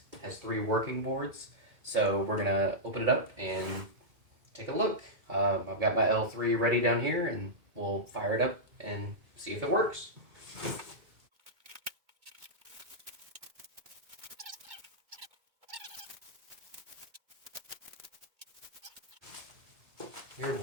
has 3 working boards. So we're gonna open it up and take a look. I've got my L3 ready down here, and we'll fire it up and see if it works. Here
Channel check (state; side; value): late; left; 2.2 ms